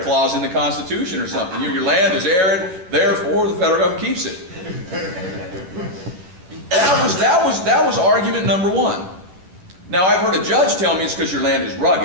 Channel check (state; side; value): late; left; 11 ms